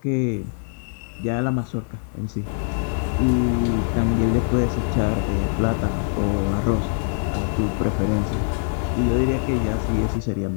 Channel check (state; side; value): silent; right; digital silence